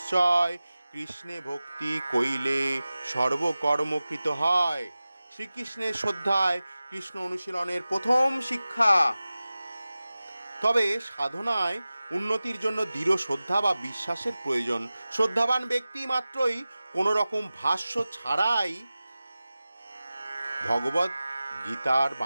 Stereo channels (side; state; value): both; inverted; correlation -0.96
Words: কৃষ্ণে ভক্তি কইলে সর্বকর্মকৃত হয়। শ্রীকৃষ্ণের শ্রদ্ধায় কৃষ্ণ অনুশীলনের প্রথম শিক্ষা। তবে সাধনায় উন্নতির জন্য দৃঢ় শ্রদ্ধা বা বিশ্বাসের প্রয়োজন। শ্রদ্ধাবান ব্যক্তি মাত্রই কোনো রকম ভাষ্য ছাড়াই ভগবত গীতার